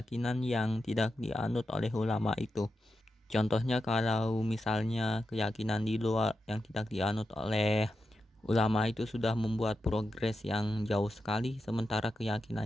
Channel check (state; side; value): normal; both; correlation 0.88